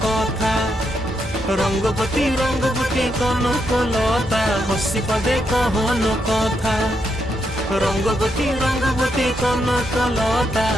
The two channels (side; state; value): both; normal; correlation 0.80